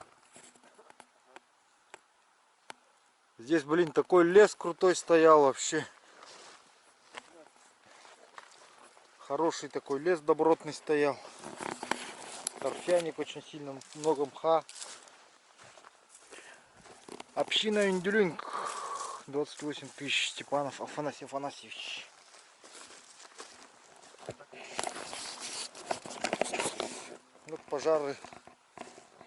Здесь, блин, такой лес крутой стоял вообще. Хороший такой лес добротный стоял. Торфяник очень сильно, много мха. Община Индюлинг. 28 тысяч. Степанов Афанасий Афанасьевич. Вот пожары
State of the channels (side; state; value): both; identical; correlation 1.00